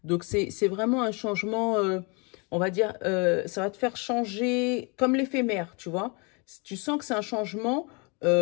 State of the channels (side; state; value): right; quieter; 31.6 dB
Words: Donc, c'est vraiment un changement, on va dire, ça va te faire changer comme l'éphémère, tu vois. Tu sens que c'est un changement